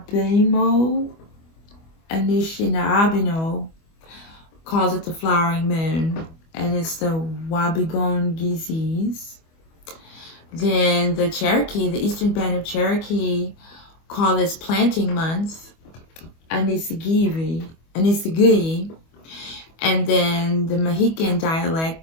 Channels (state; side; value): late; right; 25 ms